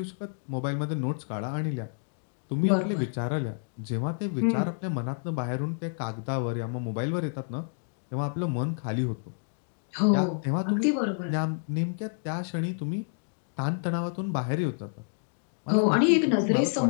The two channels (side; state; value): right; silent; digital silence